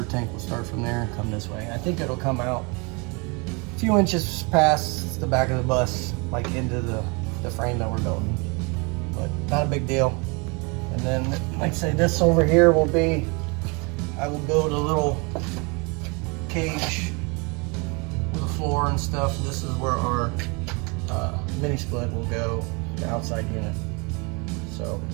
tank will start from there and come this way. I think it'll come out a few inches past the back of the bus, like into the frame that we're building. But not a big deal. And then, like I say, this over here will be, I will build a little cage with a floor and stuff. This is where our mini split will go, the outside unit. So,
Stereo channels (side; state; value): left; quieter; 30.4 dB